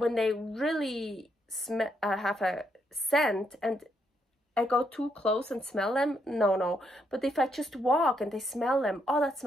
they really have a scent, and I go too close and smell them, no. But if I just walk and they smell them, oh, that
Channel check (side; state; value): both; normal; correlation 0.77